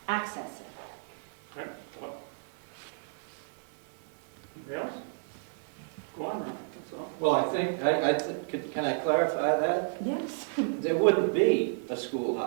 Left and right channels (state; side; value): silent; left; digital silence